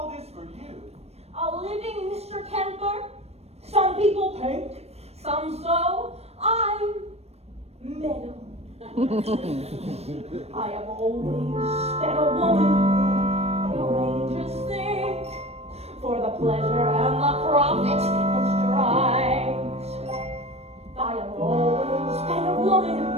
this for you? A living Mr. Kemper. Some people paint, some sew. I'm metal. I have always been a woman. No angels think for the pleasure and the profit it strives. I have always been a woman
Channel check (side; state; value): left; late; 0.31 ms